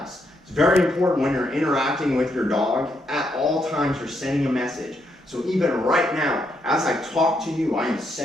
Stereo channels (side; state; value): both; normal; correlation 0.77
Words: It's very important when you're interacting with your dog. At all times, you're sending a message. So even right now, as I talk to you, I am